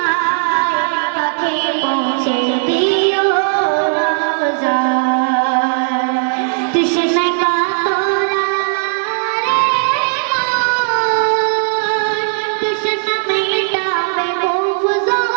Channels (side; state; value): left; silent; digital silence